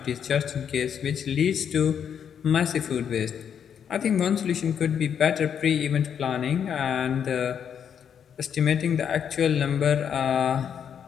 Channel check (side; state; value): right; quieter; 8.1 dB